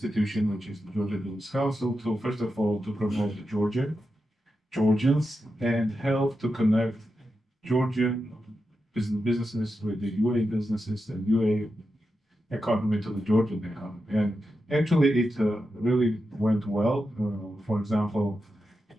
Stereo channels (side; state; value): both; normal; correlation 0.88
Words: which is the Georgian Business Council, to first of all to promote Georgians and help to connect Georgian businesses with the UAE businesses and UAE economy to the Georgian economy. And actually, it really went well. For example,